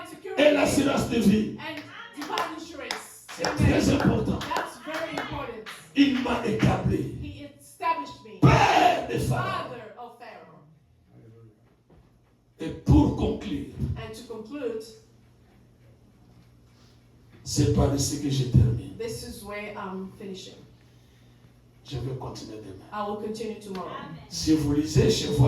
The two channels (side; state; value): both; identical; correlation 1.00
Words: security, et l'assurance divine. and divine insurance. C'est très important. That's very important. Il m'a établi He established me père de Pharaon. father of Pharaoh. Et pour conclure, And to conclude, c'est par ici que je termine. this is where I'm finishing. Je vais continuer demain. I will continue tomorrow. Si vous lisez chez vous